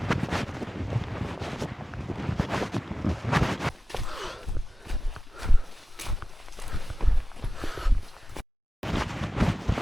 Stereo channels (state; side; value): normal; both; correlation 0.95